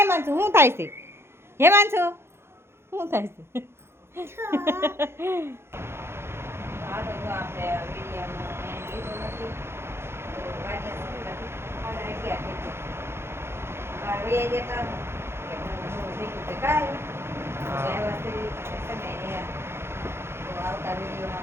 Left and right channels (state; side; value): late; left; 0.12 ms